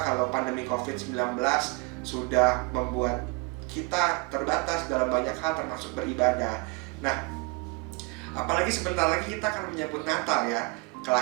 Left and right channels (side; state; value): left; quieter; 28.7 dB